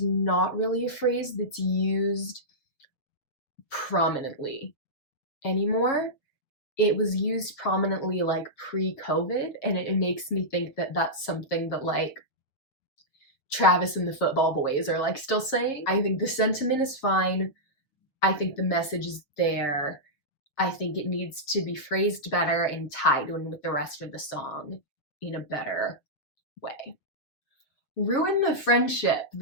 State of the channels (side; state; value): right; late; 7.1 ms